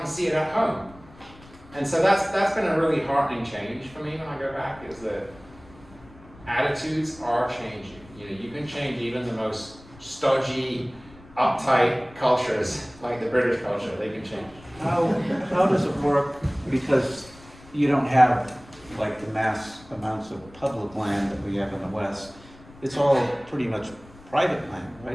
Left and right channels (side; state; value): left; noise; rumble, 22 dB below the sound